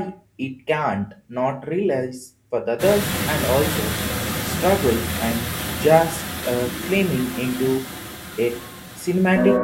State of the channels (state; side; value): identical; both; correlation 1.00